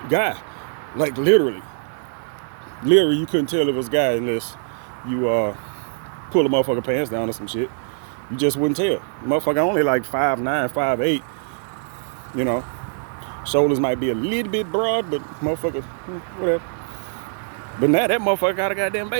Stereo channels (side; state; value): left; silent; digital silence